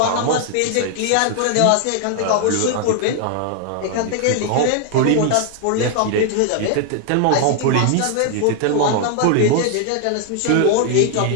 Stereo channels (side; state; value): both; different; correlation 0.00